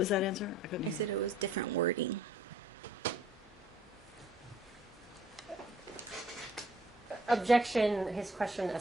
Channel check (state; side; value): normal; both; correlation 0.58